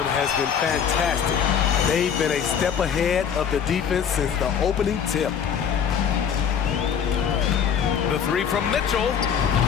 has been fantastic. They've been a step ahead of the defense since the opening tip. The 3 from Mitchell,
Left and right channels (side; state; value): right; quieter; 7.8 dB